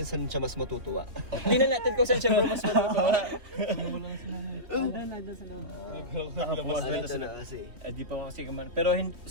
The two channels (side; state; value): left; late; 3.3 ms